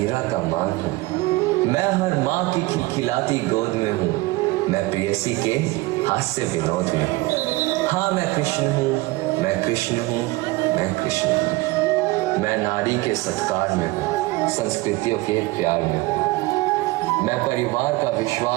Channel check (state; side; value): quieter; left; 20.9 dB